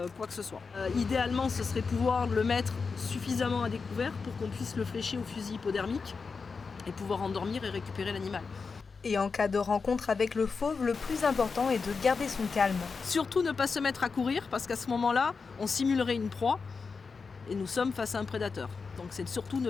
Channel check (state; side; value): quieter; right; 4.9 dB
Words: quoi que ce soit. Idéalement, ce serait pouvoir le mettre suffisamment à découvert pour qu'on puisse le flécher au fusil hypodermique et pouvoir endormir et récupérer l'animal. Et en cas de rencontre avec le fauve, le plus important est de garder son calme. Surtout ne pas se mettre à courir parce qu'à ce moment-là, on simulerait une proie et nous sommes face à un prédateur. Donc c'est surtout ne